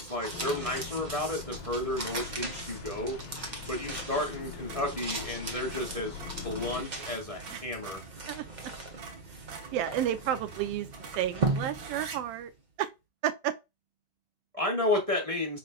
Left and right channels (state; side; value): late; left; 2.1 ms